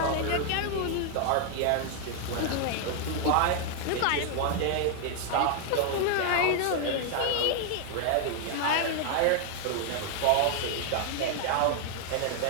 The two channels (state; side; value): different; both; correlation 0.00